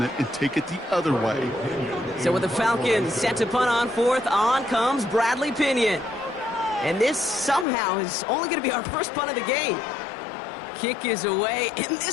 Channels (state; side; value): drops out; right; at 7.7 s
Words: it and take it the other way. So with the Falcons set to punt on fourth, on comes Bradley Pinion. And this somehow is only going to be our first punt of the game. Kick is away, and